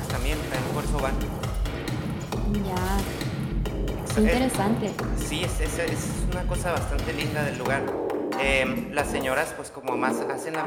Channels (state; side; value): identical; both; correlation 1.00